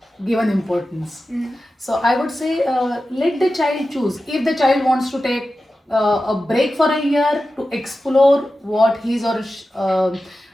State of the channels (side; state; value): both; normal; correlation 0.93